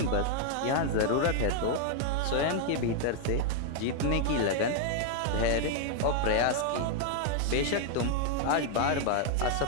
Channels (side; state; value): both; different; correlation 0.00